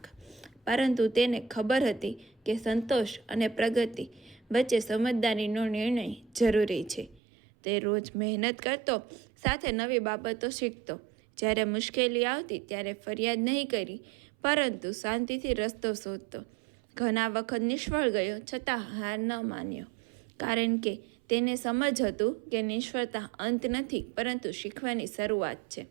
પરંતુ તેને ખબર હતી કે સંતોષ અને પ્રગતિ વચ્ચે સમજદારીનો નિર્ણય જરૂરી છે। તે રોજ મહેનત કરતો, સાથે નવી બાબતો શીખતો। જ્યારે મુશ્કેલી આવતી ત્યારે ફરિયાદ નહીં કરી, પરંતુ શાંતિથી રસ્તો શોધતો। ઘણા વખત નિષ્ફળ ગયો, છતાં હાર ન માન્યો, કારણ કે તેને સમજ હતું કે નિષ્ફળતા અંત નથી, પરંતુ શીખવાની શરૂઆત છે।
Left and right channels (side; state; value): left; drops out; at 7.2 s